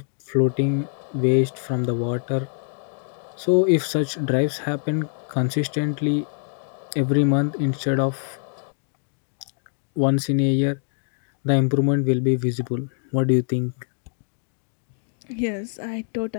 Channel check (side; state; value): right; silent; 57 dB below the other